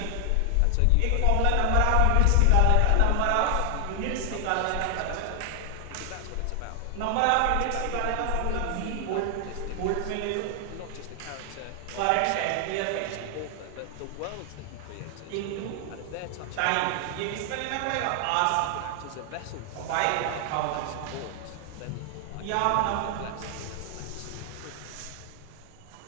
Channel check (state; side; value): different; both; correlation 0.00